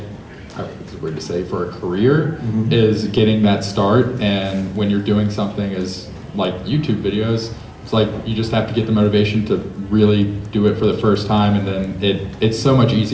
it's weird to say, for a career, is getting that start. And when you're doing something as like YouTube videos, it's like you just have to get the motivation to really do it for the first time, and then it's so much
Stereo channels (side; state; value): both; identical; correlation 1.00